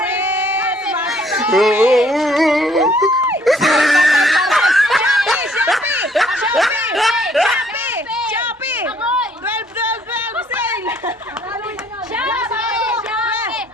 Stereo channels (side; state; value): both; normal; correlation 0.63